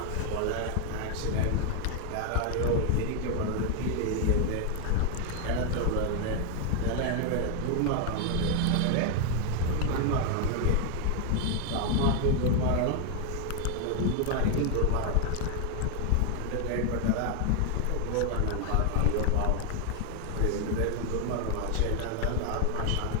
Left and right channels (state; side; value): different; both; correlation 0.00